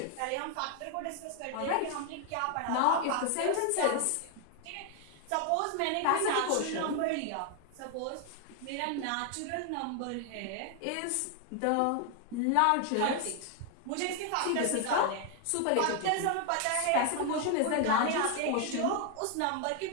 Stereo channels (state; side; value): different; both; correlation 0.00